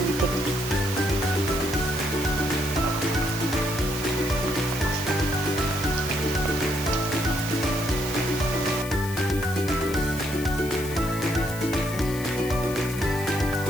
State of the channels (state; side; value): noise; left; hiss, 12 dB below the sound